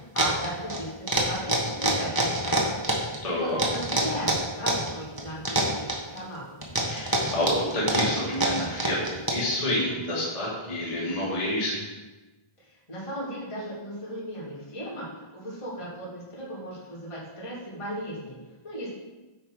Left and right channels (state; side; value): late; right; 1.0 ms